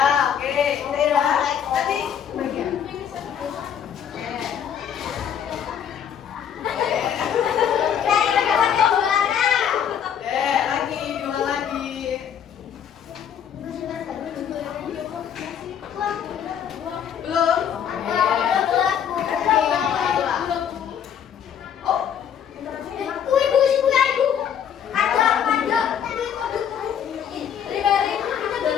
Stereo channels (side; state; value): right; quieter; 8.7 dB